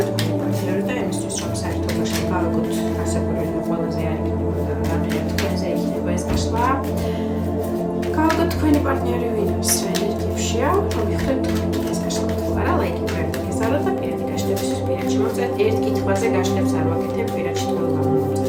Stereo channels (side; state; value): both; identical; correlation 1.00